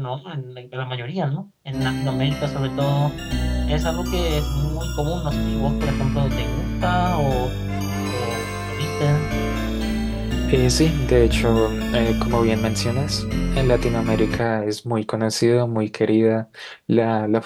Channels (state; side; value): identical; both; correlation 1.00